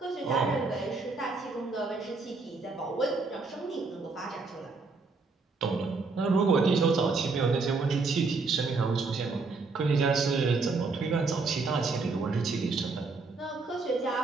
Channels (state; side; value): quieter; left; 4.1 dB